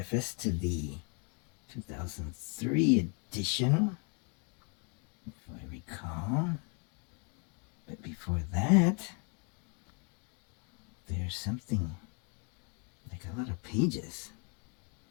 to the 2003 edition, if I recall. But before that, there's something like a lot of pages.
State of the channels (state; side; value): quieter; right; 36.5 dB